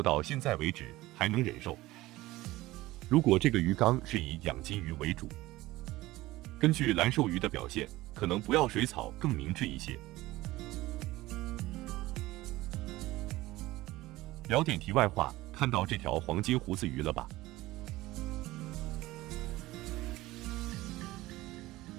到现在为止还能忍受。如果这个鱼缸是以养金鱼为主，根据蓝瘦鱼的表现，可能不要水草更明智一些。聊点题外话，看到这条黄金胡子鱼了吧？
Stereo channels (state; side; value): quieter; left; 18.1 dB